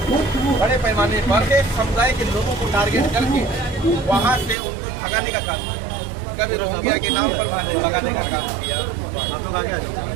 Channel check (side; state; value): left; drops out; at 4.5 s